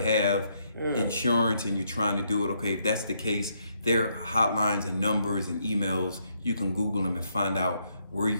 insurance and you're trying to do it. Okay, if that's the case, there are hotlines and numbers and emails. You can Google them and find out where you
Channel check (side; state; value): both; inverted; correlation -0.75